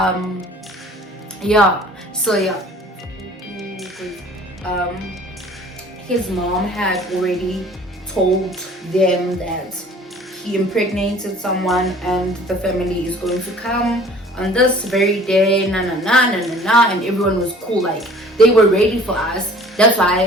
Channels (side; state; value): both; normal; correlation 0.50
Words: His mom had already told them that he impregnated someone and the family is going to come on this very day, and everyone was cool, like they were ready for us. That's